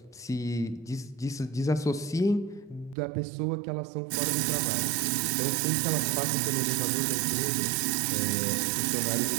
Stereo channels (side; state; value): left; drops out; at 3.0 s